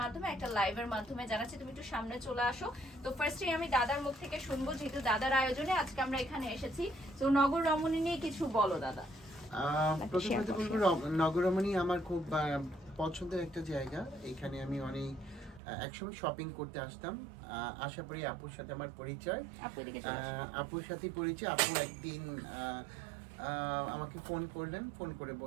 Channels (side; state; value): left; drops out; at 15.6 s